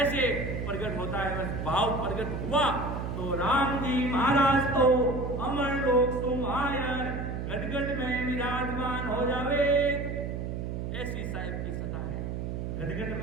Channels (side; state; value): right; noise; hum, 4 dB below the sound